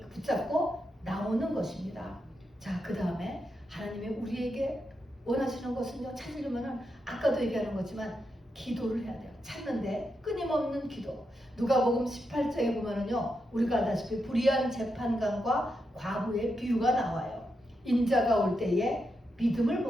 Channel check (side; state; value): both; normal; correlation 0.85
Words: 붙잡고 나오는 것입니다. 자, 그 다음에 하나님이 우리에게 원하시는 것은요, 찾으려면은 아까도 얘기하는 거지만 기도를 해야 돼요. 찾는데 끊임없는 기도. 누가복음 18장에 보면은요, 우리가 알다시피 불의한 재판관과 과부의 비유가 나와요. 인자가 올 때에 믿음을